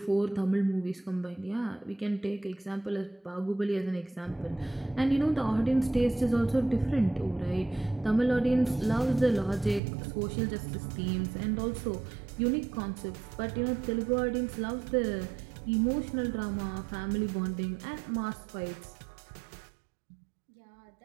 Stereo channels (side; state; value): left; drops out; at 9.8 s